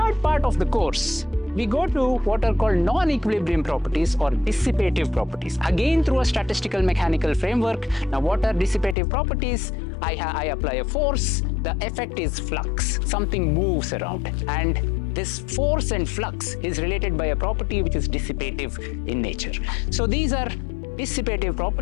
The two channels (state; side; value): drops out; right; at 9.0 s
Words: part of the course, we go to what are called non-equilibrium properties or dissipative properties, again through a statistical mechanical framework. Now, what are dissipative properties? I apply a force, the effect is flux, something moves around, and this force and flux is related by a property which is dissipative in nature. So these are dissipative